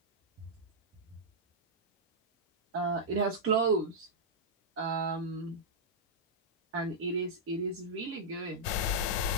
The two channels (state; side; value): normal; both; correlation -0.08